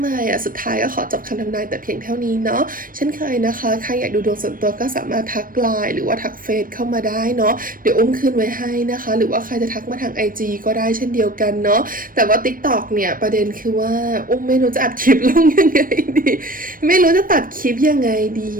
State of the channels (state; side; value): late; left; 0.41 ms